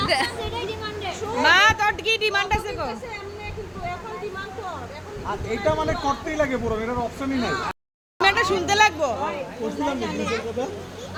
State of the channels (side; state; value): both; identical; correlation 1.00